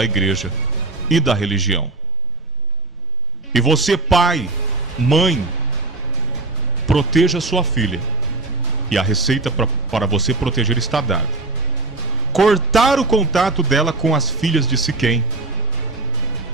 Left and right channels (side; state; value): left; quieter; 3.0 dB